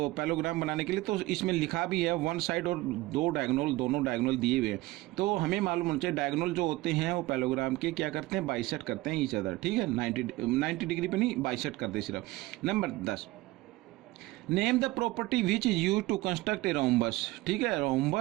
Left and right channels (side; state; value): left; quieter; 19.4 dB